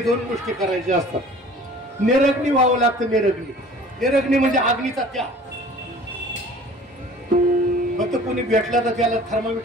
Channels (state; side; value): normal; both; correlation 0.47